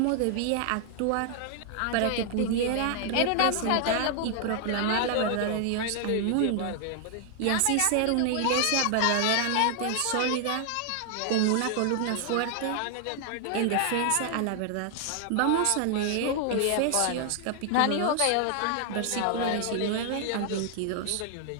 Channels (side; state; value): both; different; correlation 0.00